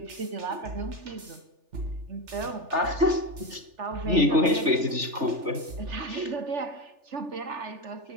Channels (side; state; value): left; late; 3.4 ms